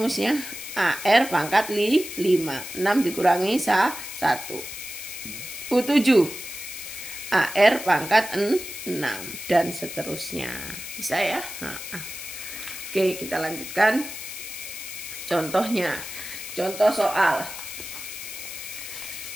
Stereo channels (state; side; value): noise; left; hiss, 9 dB below the sound